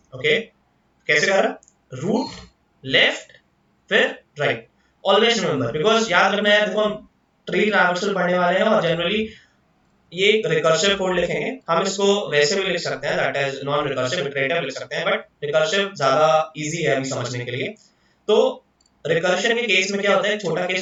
Okay, कैसे करा, रूट, लेफ्ट, फिर राइट. ऑलवेज रिमेंबर, बिकॉज याद रखना है, देखो हम ट्री ट्रैवर्सल पढ़ने वाले हैं और जनरली ये रिकर्सिव कोड लिखेंगे. हम इसको वैसे भी लिख सकते हैं, that is non recursive iterative लिख सकते हैं, बट रिकर्सिव ज्यादा इजी है अभी समझने के लिए. तो रिकर्शन के केस में क्या होता है, छोटा केस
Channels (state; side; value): identical; both; correlation 1.00